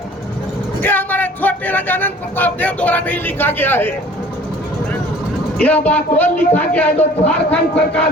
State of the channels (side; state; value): both; normal; correlation 0.49